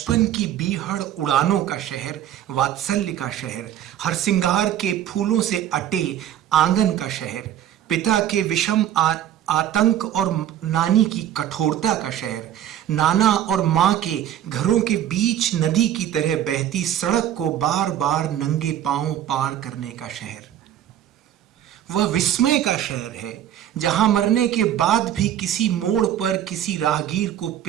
की बीहड़ उड़ानों का शहर, वात्सल्य का शहर, हरसिंगार के फूलों से अटे आंगन का शहर, पिता के विषम आतंक और नानी की कठोरता का शहर, नाना और मां के घरों के बीच नदी की तरह बहती सड़क को बार बार नंगे पांव पार करने का शहर। वह विस्मय का शहर है जहां मरने के बाद भी किसी मोड़ पर किसी राहगीर को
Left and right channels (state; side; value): quieter; left; 11.1 dB